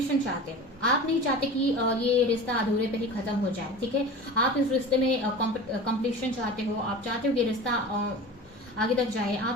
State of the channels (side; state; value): both; normal; correlation 0.34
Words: चाहते हो, आप नहीं चाहते कि ये रिश्ता अधूरे पे ही खत्म हो जाए, ठीक है। आप इस रिश्ते में कंप्लीशन चाहते हो, आप चाहते हो कि रिश्ता आगे तक जाए,